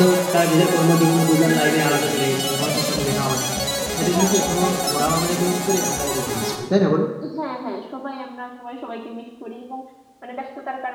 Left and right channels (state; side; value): identical; both; correlation 1.00